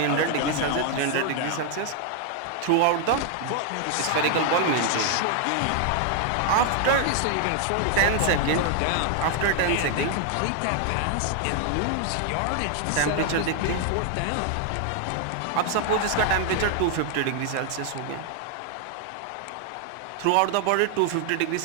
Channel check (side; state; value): both; different; correlation 0.00